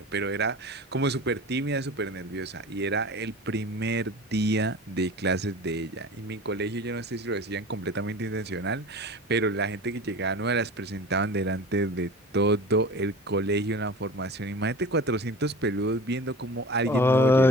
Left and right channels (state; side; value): normal; both; correlation 0.36